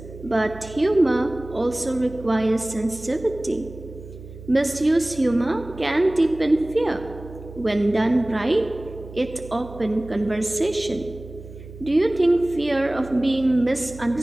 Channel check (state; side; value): noise; right; hum, 15 dB below the sound